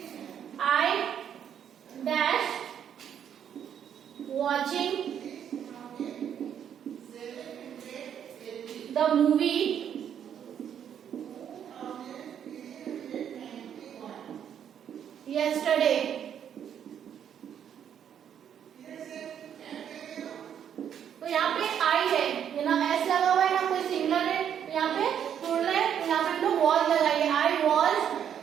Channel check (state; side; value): quieter; left; 9.0 dB